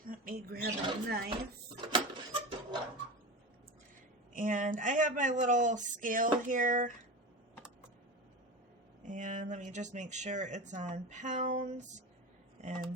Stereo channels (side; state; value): both; normal; correlation 0.26